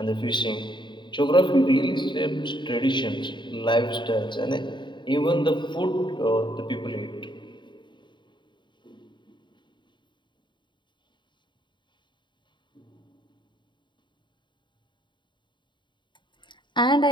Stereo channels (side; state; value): right; late; 0.23 ms